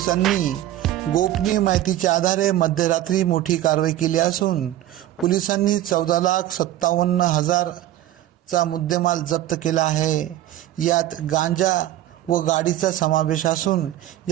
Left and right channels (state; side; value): quieter; left; 13.5 dB